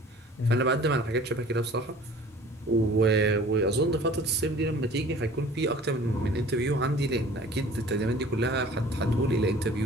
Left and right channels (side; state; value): both; normal; correlation 0.47